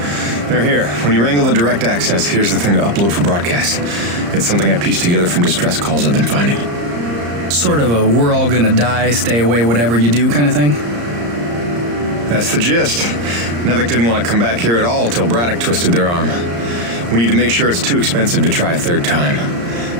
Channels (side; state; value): left; late; 34 ms